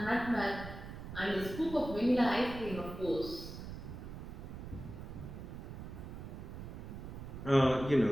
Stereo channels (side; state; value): right; noise; rumble, 9 dB below the sound